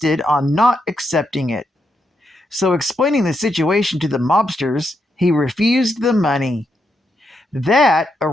on not accepting it. So, explaining the situation to the mobsters, he refused the money. That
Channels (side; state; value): both; normal; correlation 0.82